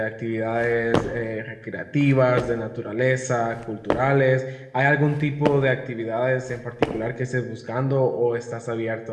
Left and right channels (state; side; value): identical; both; correlation 1.00